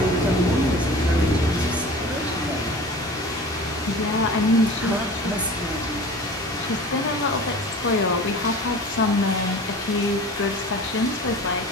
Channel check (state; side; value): normal; both; correlation 0.39